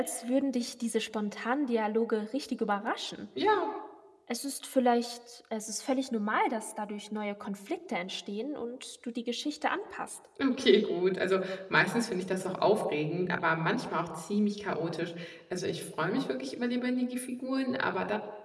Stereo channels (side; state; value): both; identical; correlation 1.00